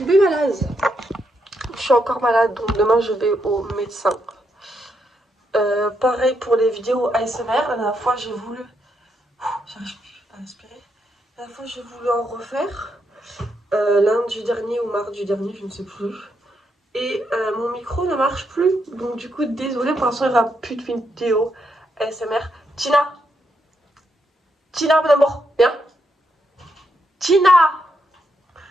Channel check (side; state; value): both; normal; correlation 0.80